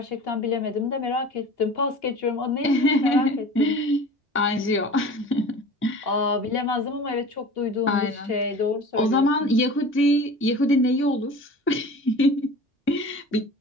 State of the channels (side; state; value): both; normal; correlation 0.39